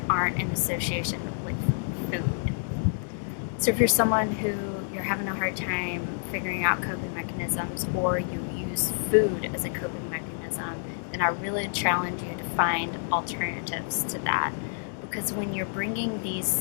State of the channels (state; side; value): silent; right; digital silence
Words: aren't in association with food. So if you're someone who you're having a hard time figuring out coping mechanisms, or you use food as a coping mechanism, then I really challenge you to find alternatives to that. Because when you're bringing